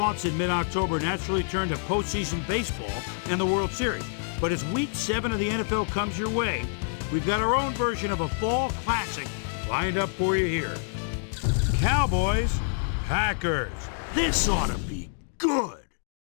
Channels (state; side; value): silent; right; digital silence